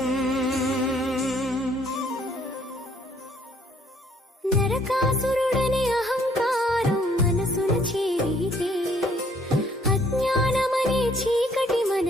నరకాసురుడని అహంకారం మనసున చేరితే అజ్ఞానమనే చీకటి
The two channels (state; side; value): normal; both; correlation 0.63